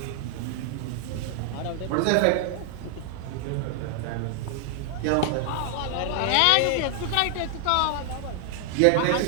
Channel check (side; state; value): both; different; correlation 0.00